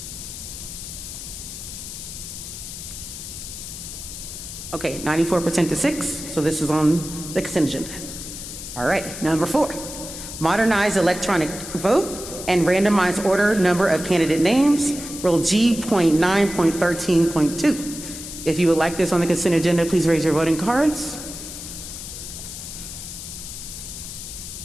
Okay, 94% to 6, so this is on the consent agenda. All right, number 4, modernize electronic vote and randomize order number of candidate names, Rule G.9.13.2. If you would like this on the consent agenda, please raise your voting cards.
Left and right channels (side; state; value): left; noise; hiss, 10 dB below the sound